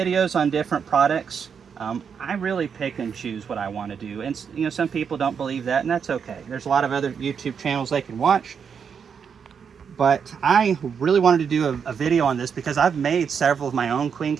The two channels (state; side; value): quieter; left; 6.8 dB